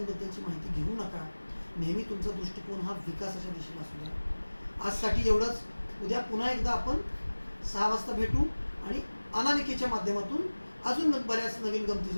माहिती घेऊ नका. नेहमी तुमचा दृष्टिकोन हा विकासाच्या दिशेला असू द्या. आजसाठी एवढंच. उद्या पुन्हा एकदा आपण 6 वाजता भेटू आणि अनामिकेच्या माध्यमातून अजून बऱ्याच नवीन गमती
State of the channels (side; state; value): both; inverted; correlation -1.00